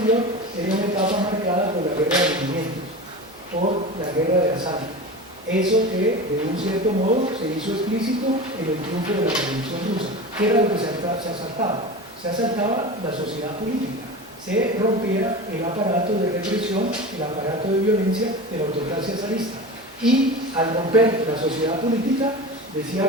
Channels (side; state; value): both; normal; correlation 0.30